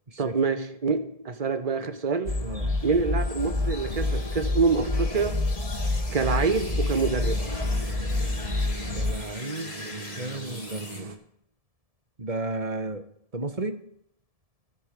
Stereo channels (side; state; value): left; late; 1.7 ms